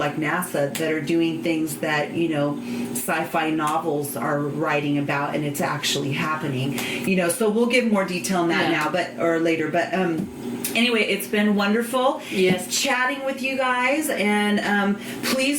NASA that are doing things that, sci-fi novels are writing about, and it's actually happening. So we'll give more detail on that now, or later. But anyway, it's been wonderful chatting with you guys, and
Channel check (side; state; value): both; identical; correlation 1.00